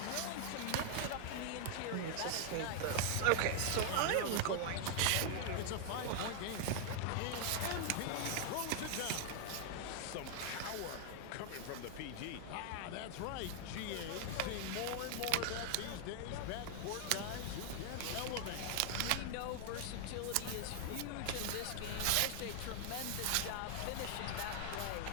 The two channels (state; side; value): different; both; correlation 0.00